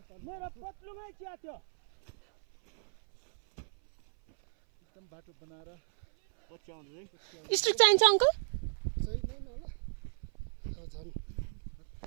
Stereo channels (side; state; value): left; silent; 55 dB below the other